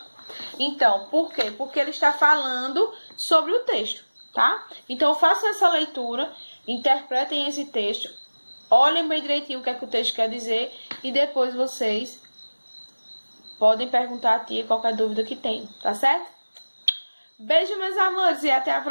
Então, por quê? Porque ele está falando sobre o texto, tá? Então, façam essa leitura, interpretem esse texto, olhem bem direitinho o que é que o texto quer dizer e depois vocês podem perguntar a tia qualquer dúvida que tenham, tá certo? Beijo, meus amores, e até a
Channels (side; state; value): both; inverted; correlation -1.00